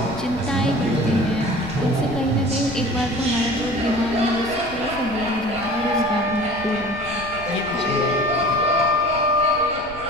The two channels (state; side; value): noise; left; rumble, 17 dB below the sound